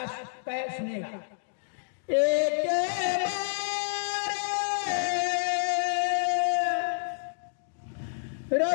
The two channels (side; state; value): right; silent; digital silence